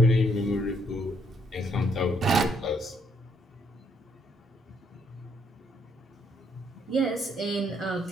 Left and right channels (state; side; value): normal; both; correlation 0.71